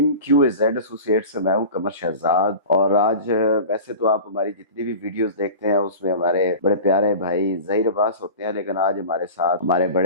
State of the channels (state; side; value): inverted; both; correlation -0.35